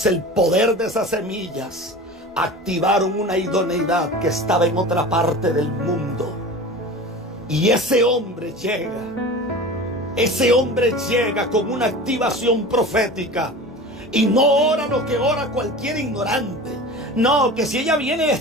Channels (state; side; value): normal; both; correlation 0.34